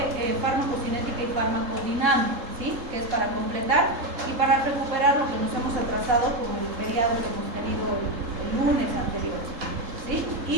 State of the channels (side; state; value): left; late; 3.7 ms